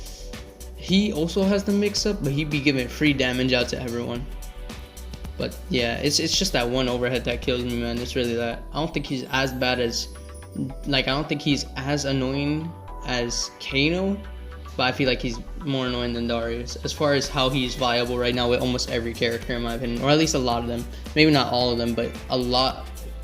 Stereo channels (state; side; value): identical; both; correlation 1.00